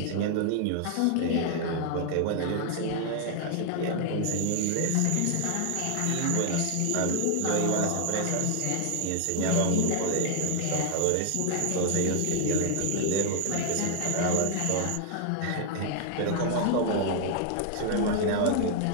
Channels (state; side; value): different; both; correlation 0.00